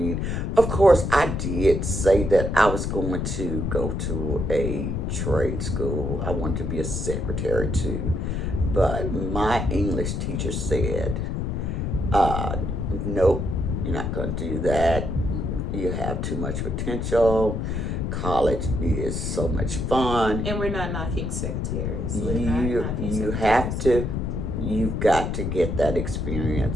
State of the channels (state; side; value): noise; left; rumble, 1 dB below the sound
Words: Of course, I did say that I was going to go to a trade school. I wanted to be a secretary too. But my English teacher said, nope, you're not going to do that. You have too much potential. College is so much fun. And we're not knocking secretaries. You've got to get that